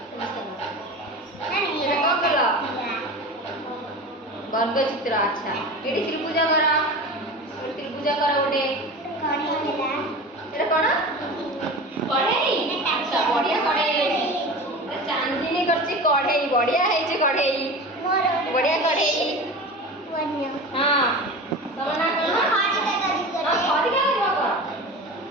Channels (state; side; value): normal; both; correlation 0.32